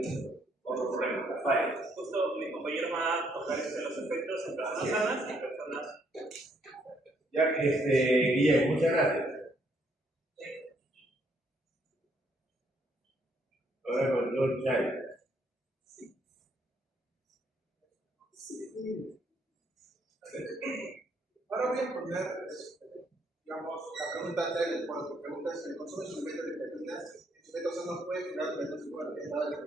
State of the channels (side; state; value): both; normal; correlation 0.70